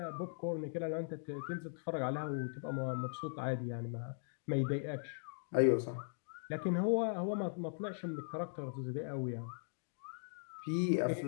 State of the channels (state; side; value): silent; right; digital silence